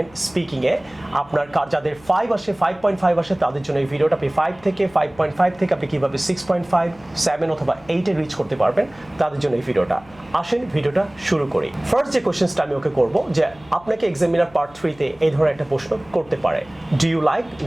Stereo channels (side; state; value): left; noise; hum, 25 dB below the sound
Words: স্পিকিং এ। আপনার যাদের 5 আসে 5.5 আসে তাদের জন্য এই ভিডিওটা। আপনি 5 থেকে 5.5 থেকে আপনি কিভাবে 6.5, 7 অথবা 8 এ রিচ করতে পারবেন তাদের জন্য এই ভিডিওটা। আসেন ভিডিওটা শুরু করি। ফার্স্ট যে কোশ্চেনটা আমি ওকে করব যে আপনাকে এক্সামিনার পার্ট 3 তে এই ধরনের একটা প্রশ্ন করতে পারে, do you like